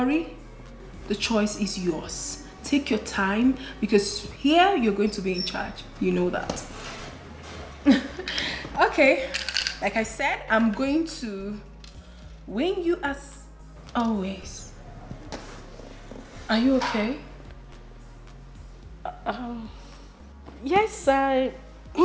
the choice is yours. Take your time because here you're going to be in charge. You know that. Okay. Like I said, I'm going to win you as always. Are you okay? Yes, I'm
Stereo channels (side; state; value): both; identical; correlation 1.00